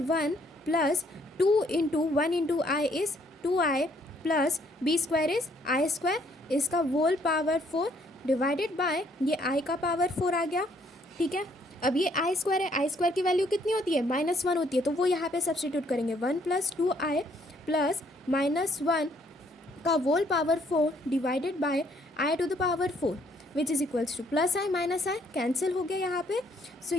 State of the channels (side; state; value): both; normal; correlation 0.67